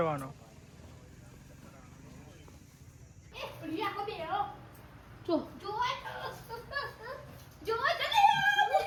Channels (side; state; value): both; identical; correlation 1.00